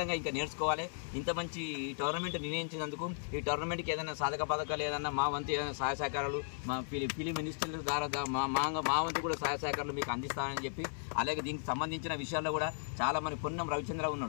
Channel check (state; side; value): silent; right; digital silence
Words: ఇంకా నేర్చుకోవాలి. ఇంత మంచి టోర్నమెంట్ నిర్ణయించినందుకు, ఈ టోర్నమెంట్కి ఏదైనా సాధక పథకాలు, ఏదైనా మా వంతు ఏదైనా సహాయ సహకారాలు, మా ఫిలిం మినిస్టర్ ద్వారా మా వంతు కూడా సహాయ సహకారాలు మీకు అందిస్తానని చెప్పి, అలాగే దీనికి సంబంధించిన విషయాల్లో కూడా చాలా మంది, పొన్నం రవిచంద్ర